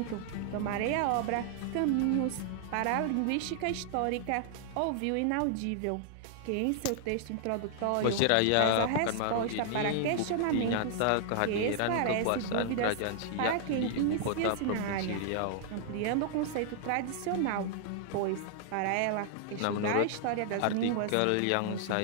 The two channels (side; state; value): both; different; correlation -0.01